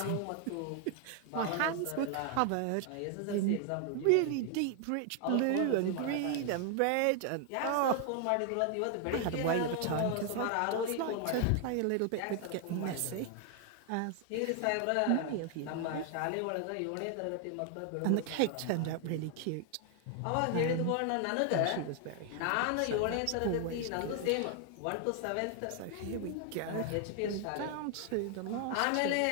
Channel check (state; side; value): different; both; correlation 0.00